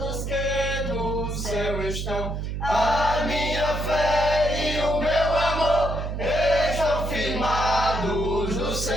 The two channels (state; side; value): noise; right; hum, 4 dB below the sound